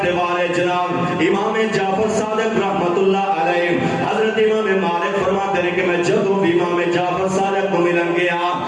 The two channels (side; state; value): both; identical; correlation 1.00